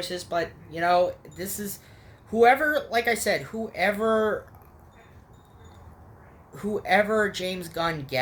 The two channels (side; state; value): both; identical; correlation 1.00